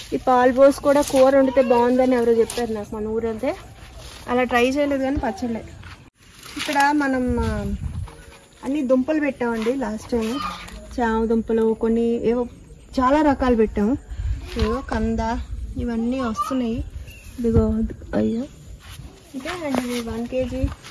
ఈ పాలు పోసి కూడా కూర వండితే బాగుందని ఎవరో చెప్పారు నాకు మన ఊరంతే. అలా ట్రై చేయలేదు కానీ పచ్చళ్ళే. ఇక్కడ మనం అన్ని దుంపలు పెట్టామండి లాస్ట్ టైం. చామ దుంపలు కొన్ని ఏవో చాలా రకాలు పెట్టాము. ఏవో కంద ఇవన్నీ వస్తున్నాయి. ఇదిగో అయ్యో ఇంకా అండి 1 kg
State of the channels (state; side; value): identical; both; correlation 1.00